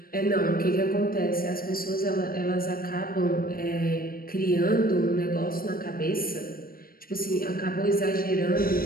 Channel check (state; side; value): late; right; 0.42 ms